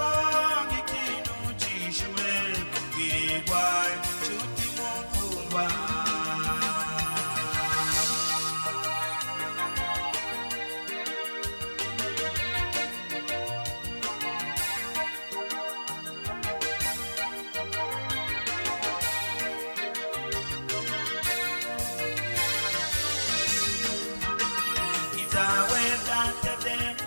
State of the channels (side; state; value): both; inverted; correlation -1.00